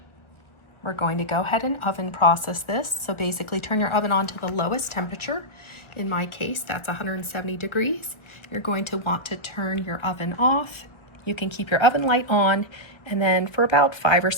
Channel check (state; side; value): late; right; 1.4 ms